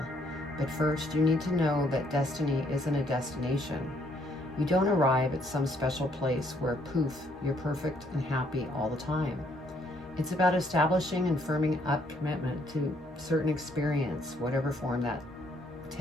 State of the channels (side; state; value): both; normal; correlation 0.68